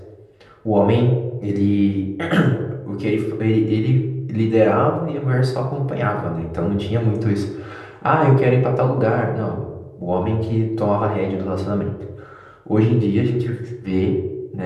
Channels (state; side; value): identical; both; correlation 1.00